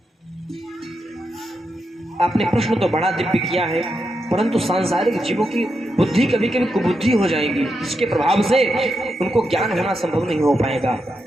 आपने प्रश्न तो बड़ा दिव्य किया है, परंतु सांसारिक जीवों की बुद्धि कभी कभी कुबुद्धि हो जाएगी, जिसके प्रभाव से उनको ज्ञान होना संभव नहीं हो पाएगा।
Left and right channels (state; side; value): normal; both; correlation 0.85